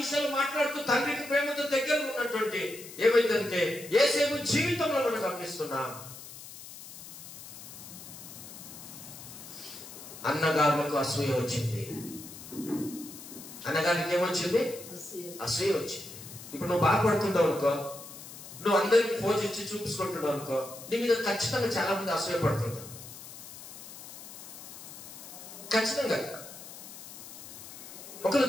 మాట్లాడుతూ తండ్రికి ప్రేమతో దగ్గర ఉన్నటువంటి ఏమైందంటే యేసేపు జీవితంలో మనం గమనిస్తున్నాం. అన్నగారులకు అసూయ వచ్చింది. అన్నగారికి ఏమొచ్చింది? అసూయ వచ్చింది. ఇప్పుడు నువ్వు బాధపడుతుంటావు అనుకో, నువ్వు అందరికి ఫోన్ ఇచ్చి చూపించుకుంటున్నావు అనుకో, నీ మీద ఖచ్చితంగా చాలా మంది అసూయ పడుతుంటారు. ఖచ్చితంగా ఒకరు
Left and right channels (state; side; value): noise; left; hiss, 14 dB below the sound